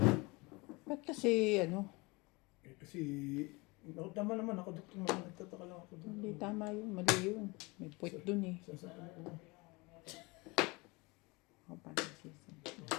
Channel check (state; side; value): quieter; right; 25.5 dB